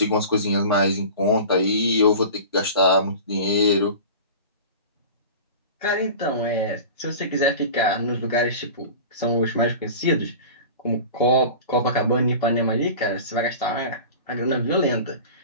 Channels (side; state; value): both; inverted; correlation -0.37